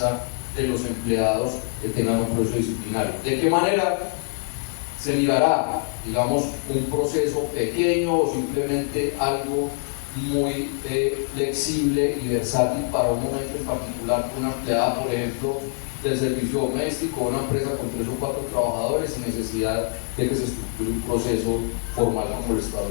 de los empleados que tengan un proceso disciplinario. ¿De qué manera? Se mirará, digamos, un proceso pequeño o simplemente algo muy flexible y versátil para un momento en particular. Una empleada, por ejemplo, del servicio doméstico, una empresa con 3 o 4 trabajadores sin necesidad de que se estructure un proceso formal como lo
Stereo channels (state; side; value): silent; right; 62 dB below the other